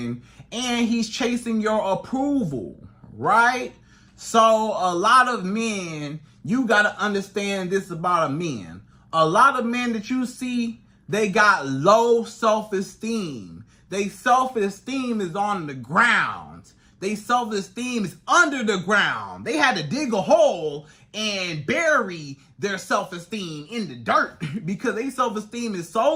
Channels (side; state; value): both; identical; correlation 1.00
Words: and he's chasing your approval, right? So a lot of men, you got to understand this about a man. A lot of men that you see, they got low self-esteem. Their self-esteem is on the ground. Their self-esteem is under the ground. They had to dig a hole and bury their self-esteem in the dirt because their self-esteem is so